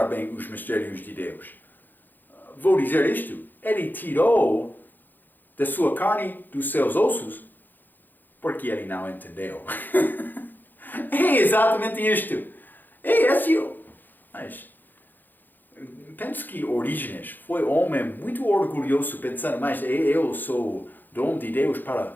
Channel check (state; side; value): late; right; 0.088 ms